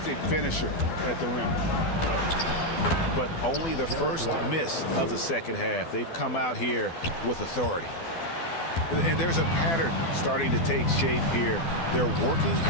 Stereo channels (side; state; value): right; late; 12 ms